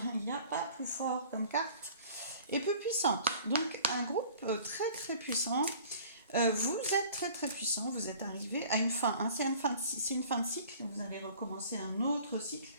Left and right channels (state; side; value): inverted; both; correlation -0.48